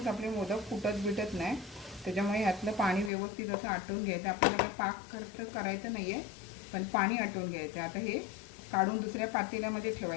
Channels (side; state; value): right; drops out; at 3.1 s